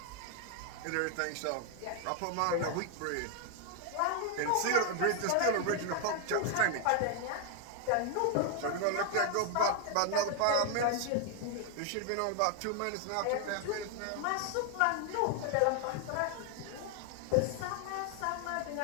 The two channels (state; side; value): different; both; correlation 0.00